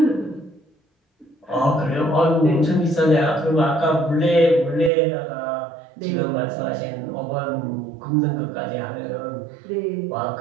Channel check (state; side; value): drops out; left; at 4.9 s